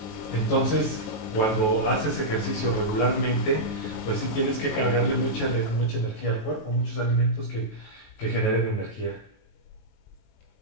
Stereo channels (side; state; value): right; late; 18 ms